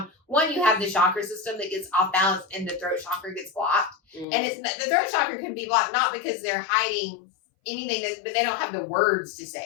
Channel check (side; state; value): right; drops out; at 4.2 s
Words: one, you have the chakra system that gets off balance and the throat chakra gets blocked. And the throat chakra can be blocked not because they're hiding anything, but they don't have the words to say